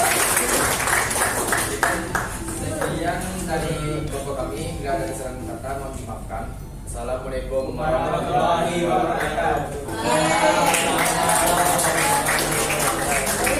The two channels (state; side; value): identical; both; correlation 1.00